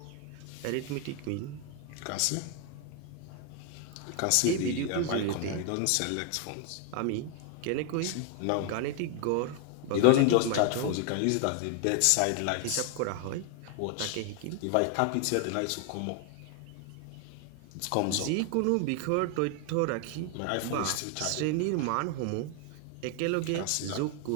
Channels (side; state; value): both; different; correlation 0.00